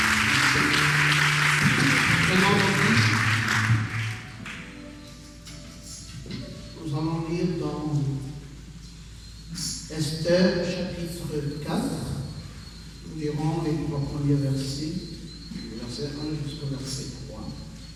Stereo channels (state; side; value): identical; both; correlation 1.00